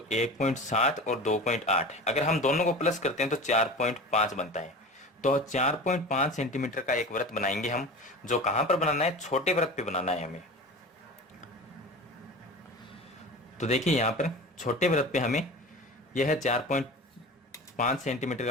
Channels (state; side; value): normal; both; correlation 0.34